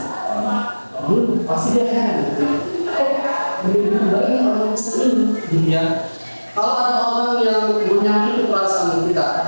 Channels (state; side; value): inverted; both; correlation -1.00